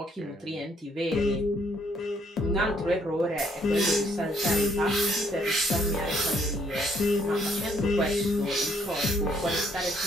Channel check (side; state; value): both; normal; correlation 0.67